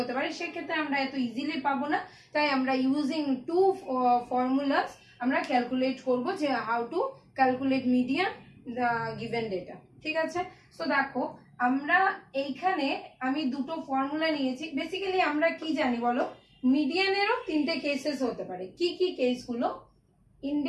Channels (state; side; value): identical; both; correlation 1.00